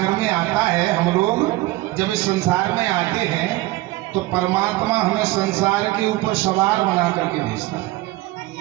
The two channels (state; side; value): quieter; left; 18.8 dB